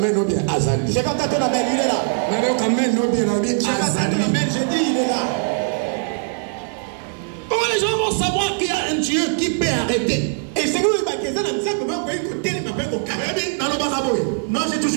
bien Azali. Je vais quand même il est là. Je dis il est là. Comment les gens vont savoir qu'il y a un Dieu qui peut arrêter? Et c'est nous moi j'ai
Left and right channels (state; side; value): silent; left; 65 dB below the other